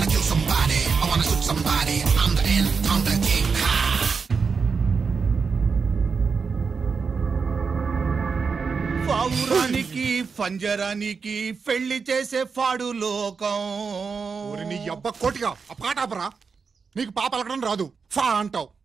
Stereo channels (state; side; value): quieter; left; 5.3 dB